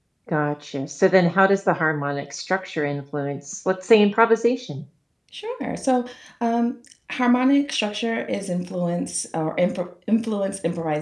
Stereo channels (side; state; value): both; identical; correlation 1.00